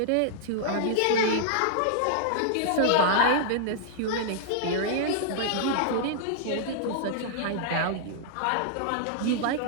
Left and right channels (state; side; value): different; both; correlation -0.01